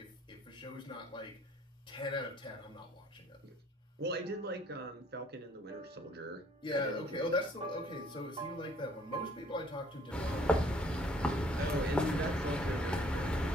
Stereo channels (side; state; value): both; normal; correlation 0.60